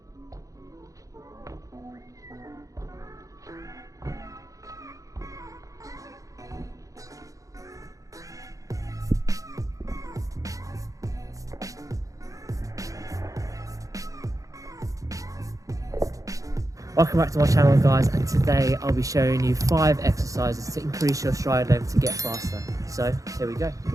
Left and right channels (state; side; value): late; left; 0.16 ms